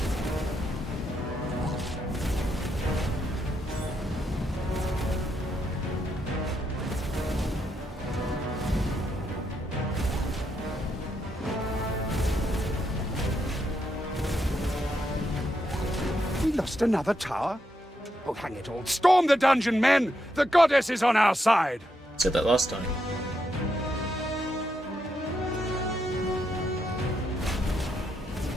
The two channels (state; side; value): normal; both; correlation 0.81